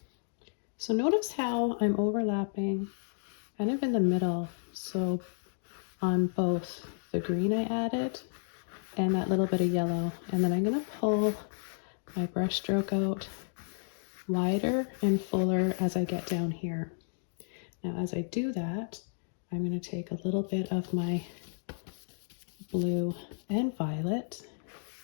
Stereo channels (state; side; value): silent; right; digital silence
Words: So notice how I'm overlapping kind of in the middle. So on both the green I added and that little bit of yellow. And then I'm going to pull my brush stroke out wider and fuller as I get down here. Now, as I do that, I'm going to take a little bit of my blue and violet